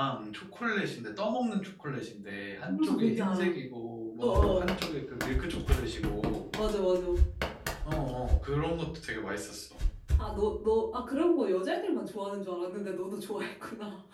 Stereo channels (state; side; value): identical; both; correlation 1.00